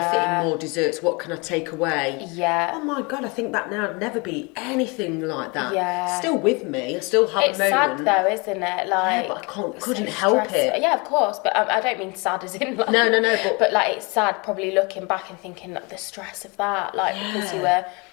fit in more desserts, what can I take away. Yeah. Oh my God, I think that now would never be anything like that. Yeah. Still with me, I still have It's a moment. sad though, isn't it? Like, but I couldn't help it. Yeah, of course, but I don't mean sad as in like... No, but like, it's sad probably looking back and thinking like, the stress of that, like, because you were...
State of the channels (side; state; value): right; quieter; 29.0 dB